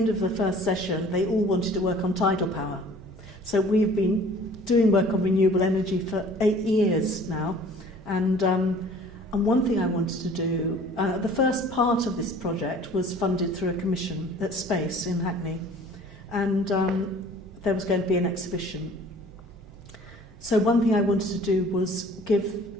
of the first session, they all wanted to work on tidal power. So we've been doing work on renewable energy for 8 years now. And one thing I wanted to do, the first part of this project was funded through a commission at Space in Hackney. And there was going to be an exhibition. So one thing I wanted to do was give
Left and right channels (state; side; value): normal; both; correlation 0.50